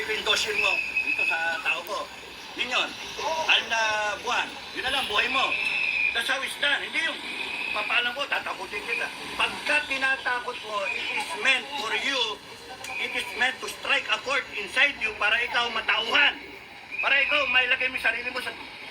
ko yung dossier mo dito sa tao ko. Yun yun. 6 na buwan. Yun na lang, buhay mo. That's how it's done. Hindi yung papaalam ko, tatakutin kita. Pagka tinatakot mo, it is meant for you, it is meant to strike a chord inside you para ikaw matauhan. Para ikaw mailagay mo yung sarili mo sa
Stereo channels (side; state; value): both; identical; correlation 1.00